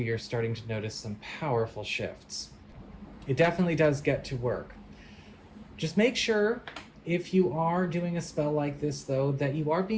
you're starting to notice some powerful shifts. It definitely does get to work. Just make sure, if you are doing a spell like this, though, that you are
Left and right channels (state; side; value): identical; both; correlation 1.00